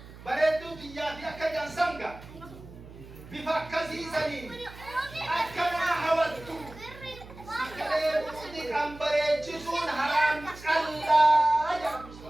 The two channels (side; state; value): right; noise; hum, 17 dB below the sound